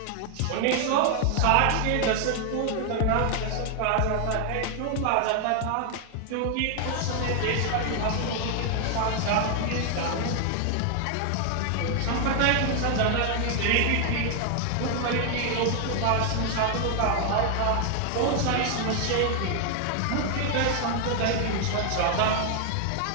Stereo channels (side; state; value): both; different; correlation 0.00